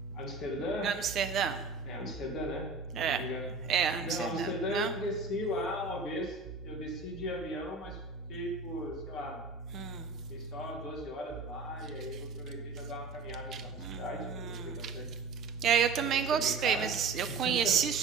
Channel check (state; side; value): quieter; left; 4.3 dB